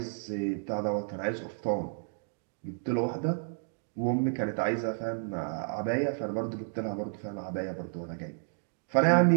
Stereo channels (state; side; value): silent; left; digital silence